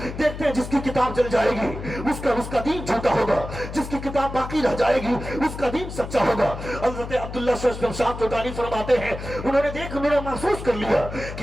دیکھتے ہیں جس کی کتاب جل جائے گی اس کا دین جھوٹا ہوگا، جس کی کتاب باقی رہ جائے گی اس کا دین سچا ہوگا۔ حضرت عبداللہ شاہ توتانی فرماتے ہیں انہوں نے محسوس کر لیا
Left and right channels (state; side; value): noise; left; hum, 9 dB below the sound